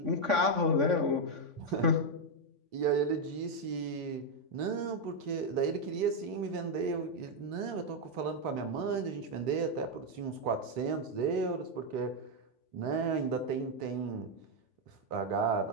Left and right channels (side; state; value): left; late; 3.7 ms